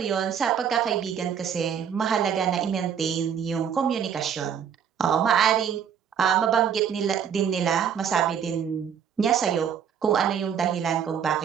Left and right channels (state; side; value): quieter; left; 8.0 dB